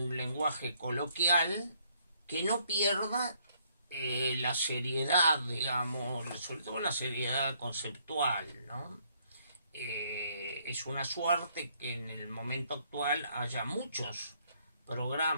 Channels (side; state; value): both; inverted; correlation -0.68